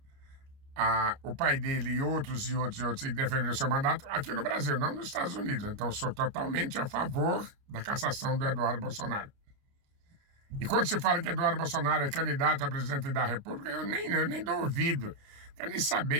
O pai dele e outros defenderam o seu mandato aqui no Brasil, não nos Estados Unidos. Então, sou totalmente a favor da cassação do Eduardo Bolsonaro. E quando se fala que Eduardo Bolsonaro é candidato a presidente da República, eu nem dou ouvido, quero nem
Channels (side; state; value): left; late; 29 ms